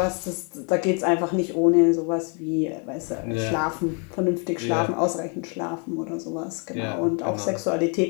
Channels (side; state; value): right; quieter; 36.5 dB